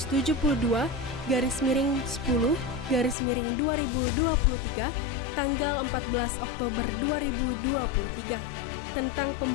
tanggal 14 Oktober 2023 tentang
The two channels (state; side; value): drops out; right; at 3.2 s